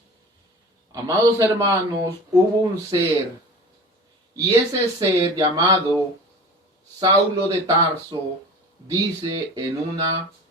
Amados hermanos, hubo un ser, y ese ser llamado Saulo de Tarso dice en una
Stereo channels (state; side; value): normal; both; correlation 0.37